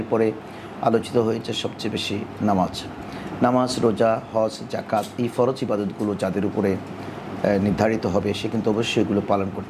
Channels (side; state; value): both; identical; correlation 1.00